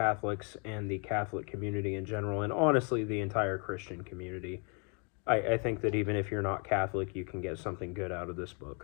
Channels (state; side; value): quieter; right; 34.8 dB